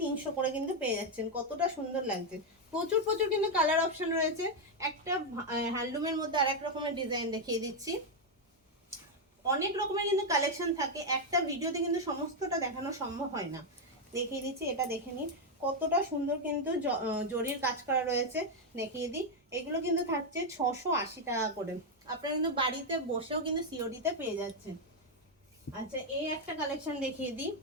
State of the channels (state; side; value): normal; both; correlation 0.02